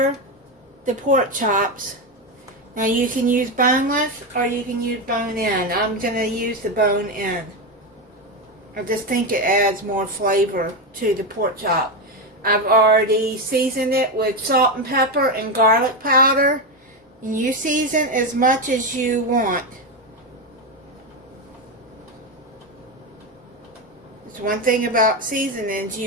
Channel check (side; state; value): both; normal; correlation 0.11